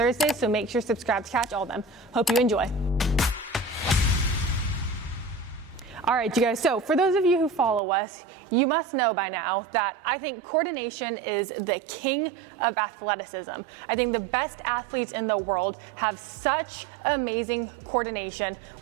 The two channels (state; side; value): drops out; left; at 7.8 s